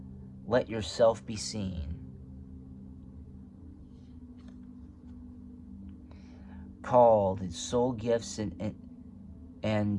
yourself be seen. Called soul gifts and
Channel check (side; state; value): both; identical; correlation 1.00